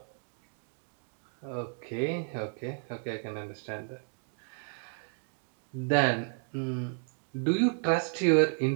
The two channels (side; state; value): left; silent; 56 dB below the other